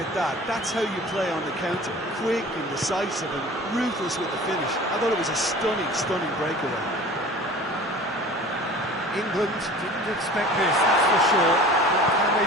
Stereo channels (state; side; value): normal; both; correlation 0.43